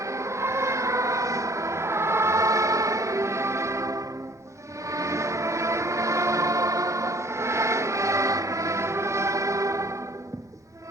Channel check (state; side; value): normal; both; correlation 0.54